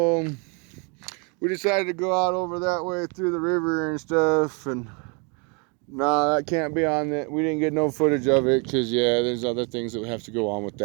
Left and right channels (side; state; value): left; quieter; 33.8 dB